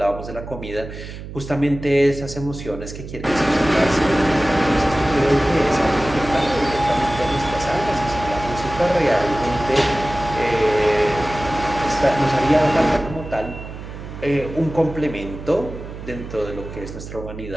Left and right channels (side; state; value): right; noise; hum, 11 dB below the sound